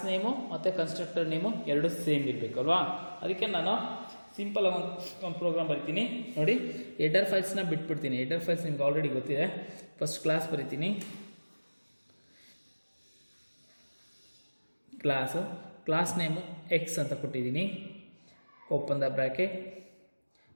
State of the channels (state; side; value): inverted; both; correlation -1.00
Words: ನೇಮು ಮತ್ತು ಕನ್ಸ್ಟ್ರಕ್ಟರ್ ನೇಮು ಎರಡು ಸೇಮ್ ಇರಬೇಕು ಅಲ್ವಾ. ಅದಕ್ಕೆ ನಾನು ಸಿಂಪಲ್ ಒಂದು ಪ್ರೋಗ್ರಾಮ್ ಬರಿತೀನಿ ನೋಡಿ. ಹೆಡರ್ ಫೈಲ್ಸ್ನ ಬಿಟ್ಬಿಡ್ತೀನಿ. ಹೆಡರ್ ಫೈಲ್ಸ್ ನಿಮ್ಗೆ ಆಲ್ರೆಡಿ ಗೊತ್ತಿದೆ. ಫಸ್ಟ್ ಕ್ಲಾಸ್ ಬರಿತೀನಿ, ಕ್ಲಾಸ್ ನೇಮು ಎಕ್ಸ್ ಅಂತ ಕೊಟ್ಟಿದ್ದೀನಿ. Open the bracket,